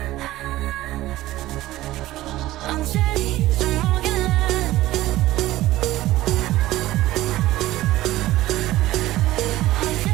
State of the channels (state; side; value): quieter; left; 16.2 dB